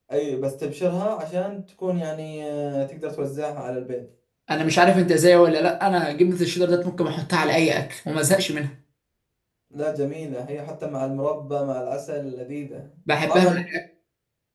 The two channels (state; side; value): identical; both; correlation 1.00